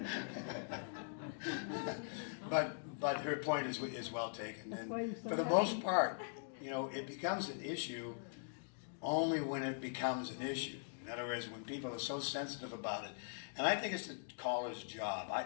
But her point is well taken, and for the most part, you know, it becomes an issue only when it becomes an issue. In other words, when people are so sensitive about it. And I think it's the caller's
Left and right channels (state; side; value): silent; right; digital silence